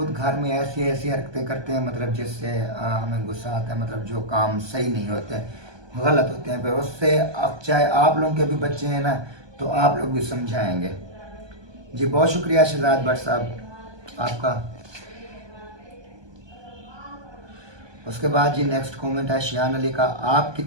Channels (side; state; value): left; late; 1.2 ms